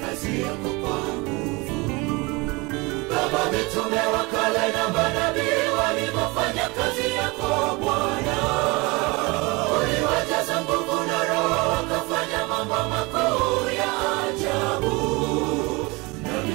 kazi yako kwa nguvu. Baba, mitume wa kale na manabii walivyofanya kazi yako Bwana, uliwajaza nguvu na Roho, wakafanya mambo makuu ya ajabu.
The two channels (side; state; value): left; quieter; 25.5 dB